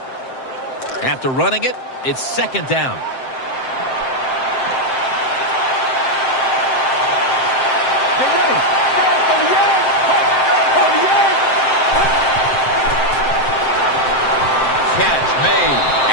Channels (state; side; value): late; right; 7.7 ms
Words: After running it, it's second down. Catch made,